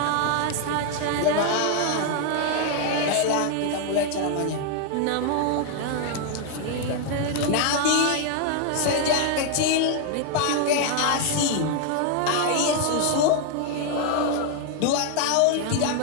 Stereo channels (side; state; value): both; different; correlation 0.00